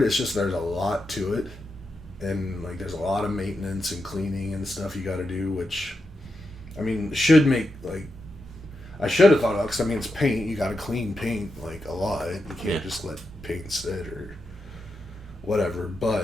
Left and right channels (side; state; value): both; normal; correlation 0.87